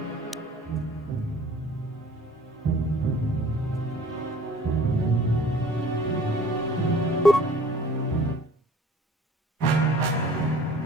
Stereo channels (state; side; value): normal; both; correlation 0.50